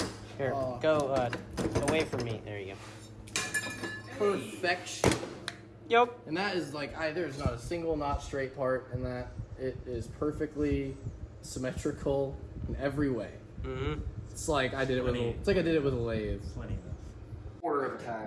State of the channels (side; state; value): both; identical; correlation 1.00